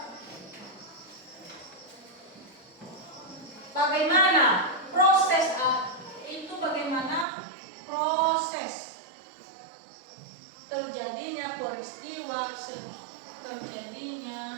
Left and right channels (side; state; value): left; drops out; at 7.2 s